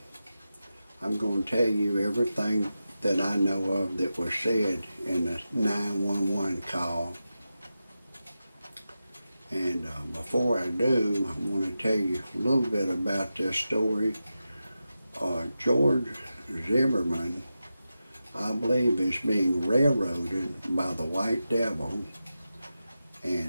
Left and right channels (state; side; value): inverted; both; correlation -0.92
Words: I'm going to tell you everything that I know of that was said in the 911 call. And before I do, I want to tell you a little bit about this story. George Zimmerman, I believe, is being railroaded by the white devil,